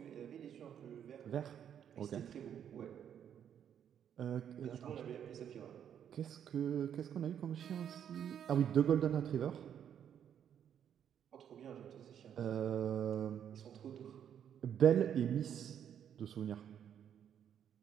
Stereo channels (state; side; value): quieter; left; 9.1 dB